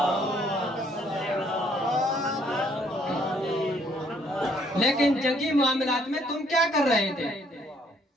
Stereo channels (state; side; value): normal; both; correlation 0.65